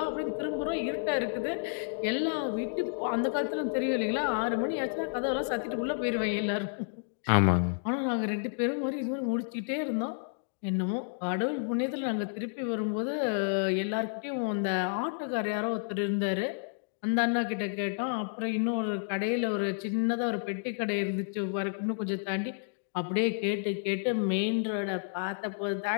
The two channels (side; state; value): right; silent; digital silence